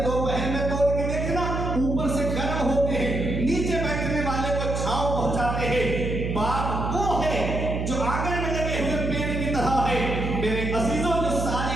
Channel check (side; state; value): right; noise; hum, 2 dB below the sound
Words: दोपहर में तोड़ के देखना, ऊपर से गर्म होते हैं, नीचे बैठने वाले को छांव पहुंचाते हैं। बाप